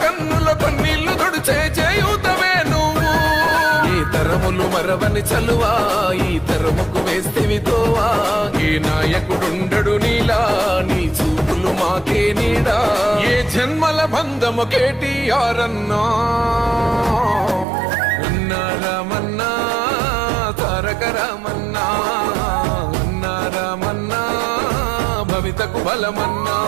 కన్నుల కన్నీళ్లు తుడిచే చేయూతవే నువ్వు. ఈ తరములు మరవని చలువా, ఈ తరముకు వేస్తేవి తోవా. ఏ నాయకుడుండడు నీలా, నీ చూపులు మాకే నీడా. ఏ జన్మల బంధము కేటీఆర్ అన్నా, అన్నా రామన్నా తారక రామన్నా, అన్నా రామన్నా భవితకు బలమన్నా.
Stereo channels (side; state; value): left; drops out; at 17.7 s